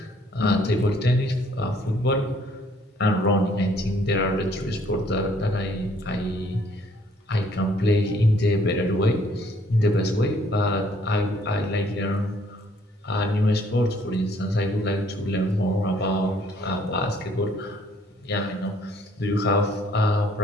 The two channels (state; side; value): normal; both; correlation 0.62